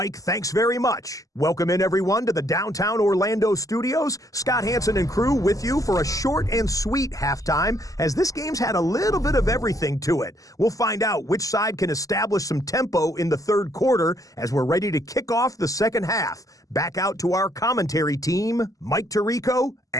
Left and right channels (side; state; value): right; late; 0.17 ms